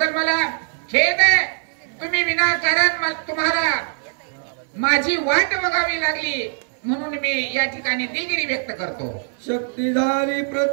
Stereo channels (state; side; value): silent; left; 59 dB below the other